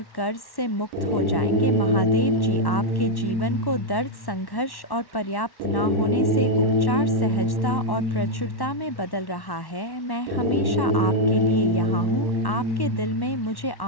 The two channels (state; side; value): late; right; 1.1 ms